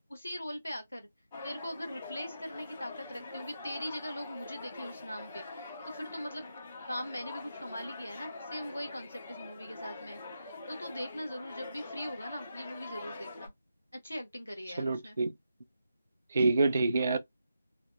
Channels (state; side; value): inverted; both; correlation -0.85